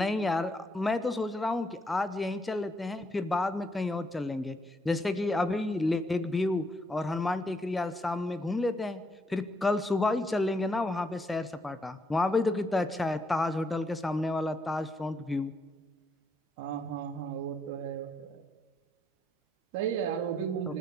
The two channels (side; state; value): both; normal; correlation 0.76